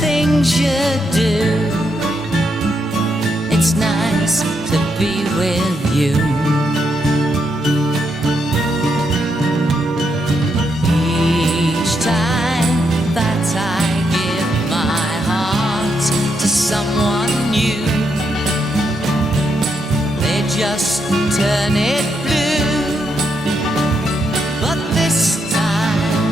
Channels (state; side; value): normal; both; correlation 0.80